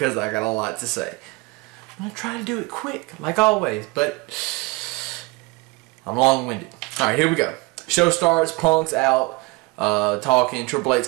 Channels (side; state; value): left; quieter; 25.4 dB